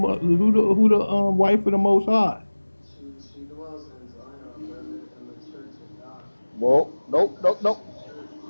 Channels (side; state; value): both; inverted; correlation -1.00